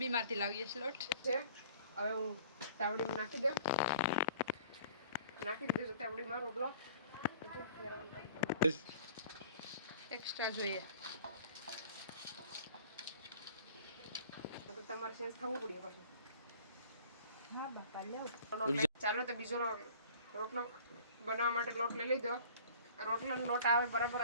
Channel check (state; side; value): inverted; both; correlation -0.49